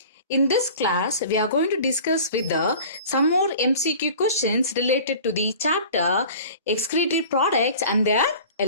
In this class, we are going to discuss with some more MCQ questions related to the chapter excretory products and their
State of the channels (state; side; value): inverted; both; correlation -0.42